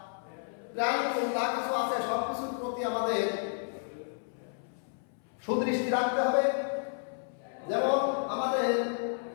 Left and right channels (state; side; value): silent; right; 57 dB below the other